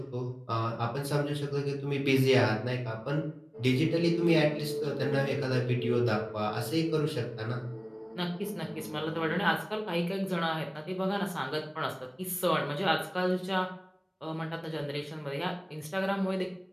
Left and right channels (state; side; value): identical; both; correlation 1.00